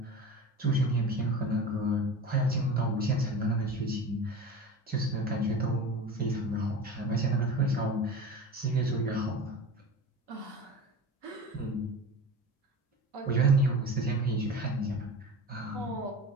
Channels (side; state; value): both; normal; correlation 0.33